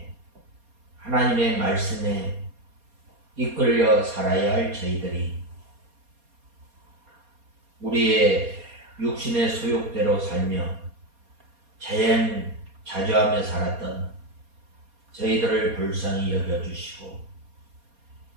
하나님의 말씀에 이끌려 살아야 할 저희들이 우리의 육신의 소욕대로 살며 자연자주하며 살았던 저희들을 불쌍히 여겨주시고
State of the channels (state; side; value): late; left; 4.2 ms